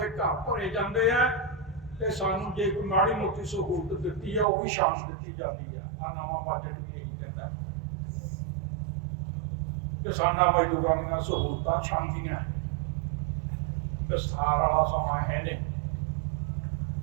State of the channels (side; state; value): left; drops out; at 4.5 s